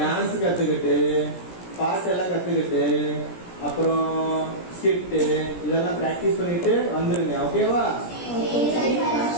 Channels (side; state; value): right; late; 17 ms